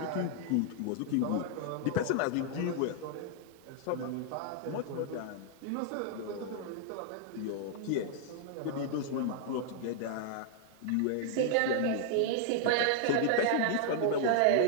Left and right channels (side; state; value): both; different; correlation -0.01